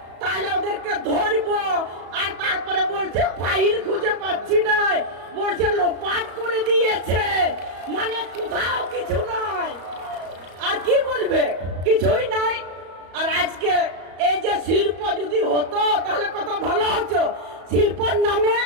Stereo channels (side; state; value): left; late; 34 ms